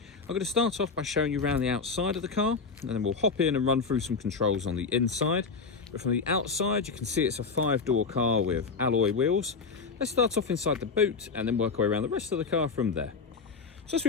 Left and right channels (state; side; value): quieter; right; 4.9 dB